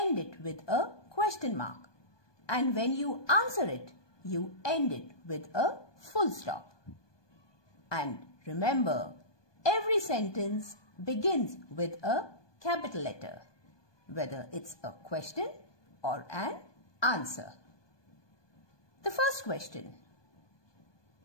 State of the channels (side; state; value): right; late; 1.2 ms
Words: it with a question mark. And when you answer it, you end it with a full stop. And remember, every sentence begins with a capital letter, whether it's a question or an answer. The first question.